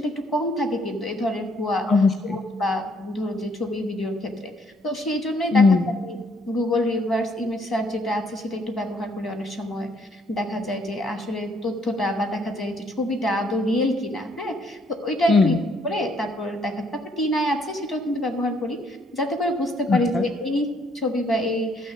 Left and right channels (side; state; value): both; normal; correlation 0.67